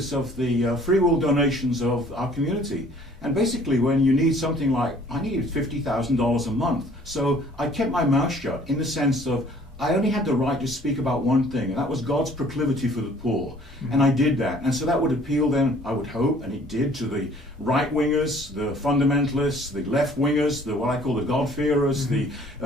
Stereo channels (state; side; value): normal; both; correlation 0.55